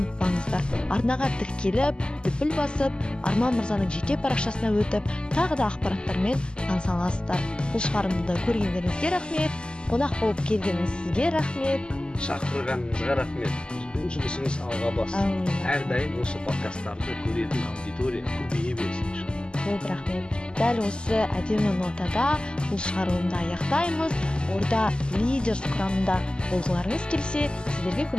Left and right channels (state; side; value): late; right; 0.048 ms